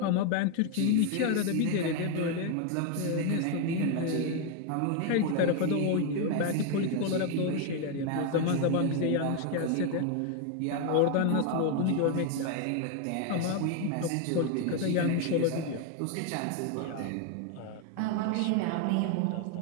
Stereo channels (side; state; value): both; different; correlation 0.01